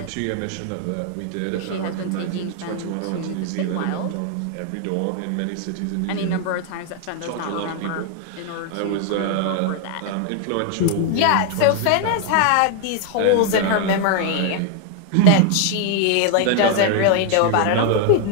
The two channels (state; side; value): different; both; correlation 0.00